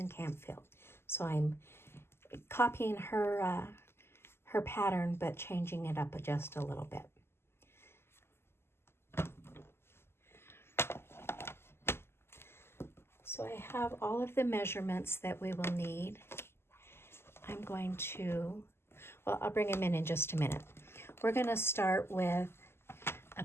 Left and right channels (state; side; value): late; right; 0.12 ms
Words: Campfield. So I'm copying her pattern, but changing it up just a little bit. So I have all of the measurements that we will need. I'm going to, well, I'll bring them in just a minute. We're going to start with a